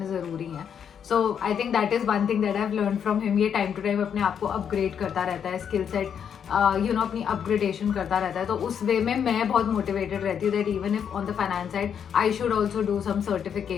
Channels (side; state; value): right; quieter; 8.0 dB